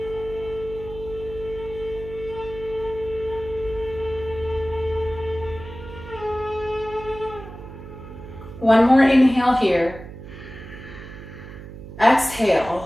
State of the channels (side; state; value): right; noise; hum, 13 dB below the sound